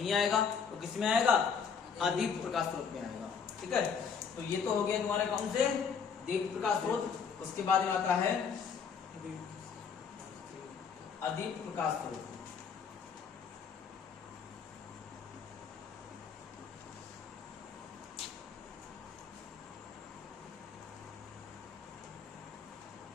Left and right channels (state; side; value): quieter; right; 6.3 dB